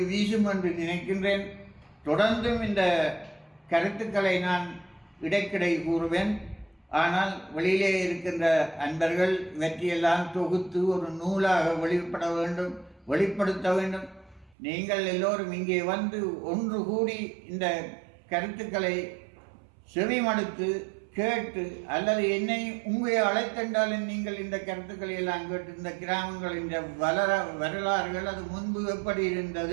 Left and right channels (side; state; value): left; drops out; at 14.6 s